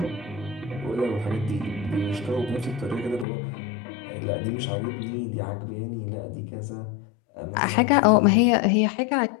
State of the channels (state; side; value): drops out; right; at 3.2 s